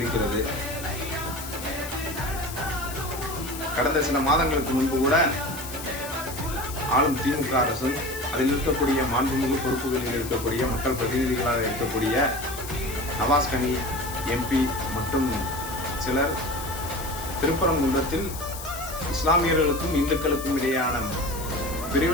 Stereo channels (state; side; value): noise; left; hiss, 11 dB below the sound